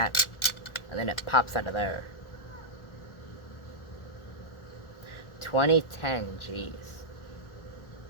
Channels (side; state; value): right; late; 1.4 ms